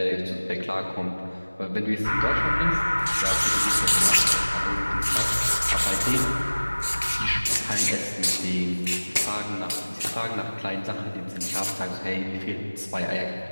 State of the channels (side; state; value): both; inverted; correlation -1.00